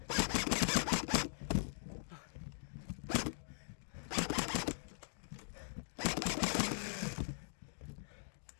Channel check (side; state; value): right; silent; digital silence